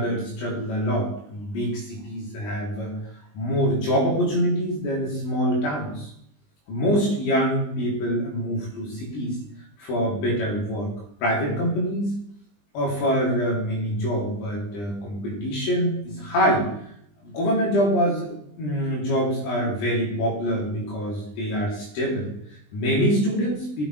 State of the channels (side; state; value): right; late; 20 ms